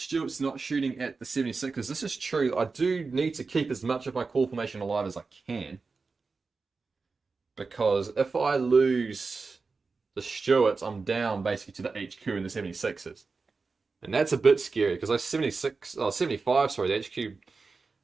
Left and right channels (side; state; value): left; quieter; 4.3 dB